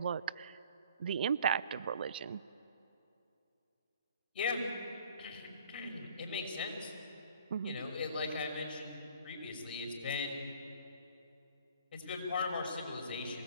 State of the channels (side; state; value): both; inverted; correlation -0.54